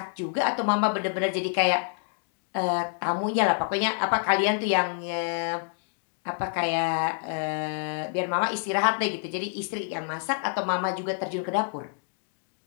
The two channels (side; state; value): right; silent; digital silence